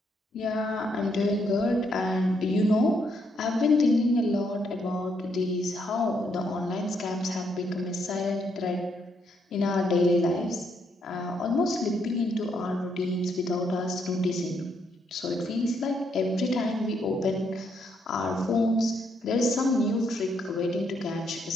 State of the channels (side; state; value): both; normal; correlation 0.75